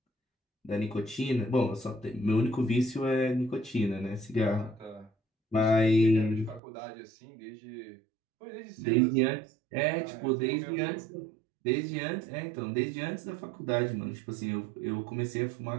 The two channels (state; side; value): drops out; left; at 6.6 s